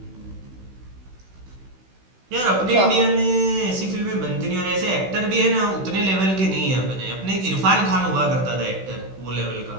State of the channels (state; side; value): late; left; 16 ms